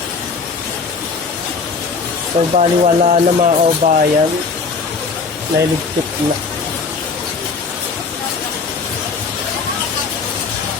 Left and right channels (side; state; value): right; quieter; 4.7 dB